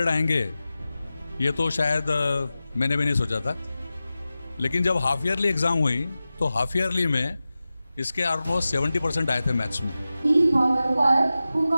आएंगे ये तो शायद मैंने भी नहीं सोचा था। लेकिन जब हाफ ईयरली एग्ज़ाम हुई तो हाफ ईयरली में इसके ऑलमोस्ट 70% आए थे मैथ्स में। Who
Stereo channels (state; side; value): inverted; both; correlation -0.95